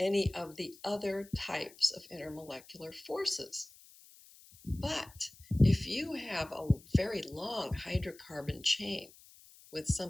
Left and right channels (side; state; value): left; noise; hiss, 23 dB below the sound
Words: of the other types of intermolecular forces. But if you have a very long hydrocarbon chain with